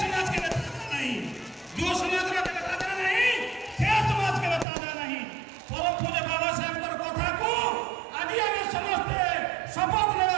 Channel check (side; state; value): left; drops out; at 4.7 s